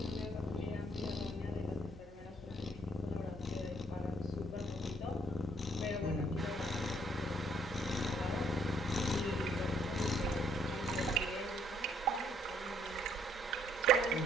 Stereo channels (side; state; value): both; normal; correlation 0.65